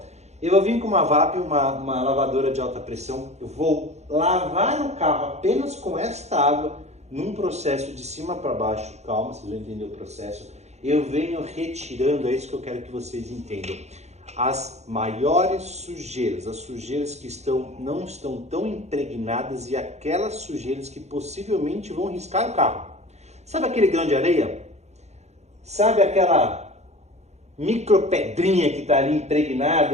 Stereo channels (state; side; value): late; left; 0.32 ms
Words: Eu vou vir com uma VAP, uma lavadora de alta pressão, eu vou lavar o carro apenas com esta água, num processo de cima para baixo, calma, vocês vão entender o processo. Eu venho retirando, é isso que eu quero que vocês entendam, as maiores sujeiras, as sujeiras que não estão tão impregnadas e aquelas sujeiras que possivelmente vão riscar o carro. Sabe aquele grão de areia? Sabe aquela micropedrinha que está ali